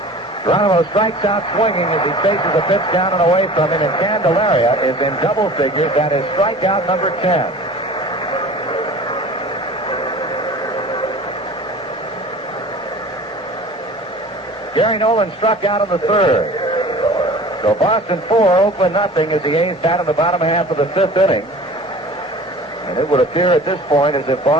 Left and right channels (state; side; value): normal; both; correlation 0.42